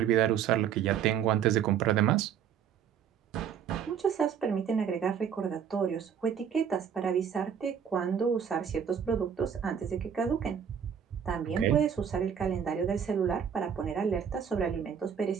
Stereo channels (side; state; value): left; quieter; 8.0 dB